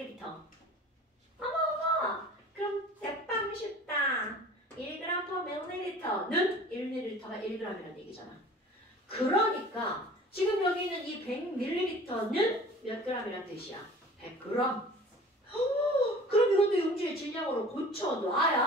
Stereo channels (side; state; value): both; normal; correlation 0.45